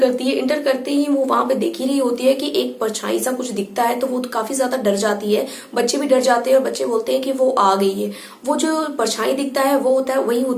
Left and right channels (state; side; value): identical; both; correlation 1.00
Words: है। एंटर करते ही वो वहां पे देख ही रही होती है कि एक परछाई सा कुछ दिखता है, तो वो काफी ज्यादा डर जाती है। बच्चे भी डर जाते हैं और बच्चे बोलते हैं कि वो आ गई है। वो जो परछाई दिखता है वो होता है, वही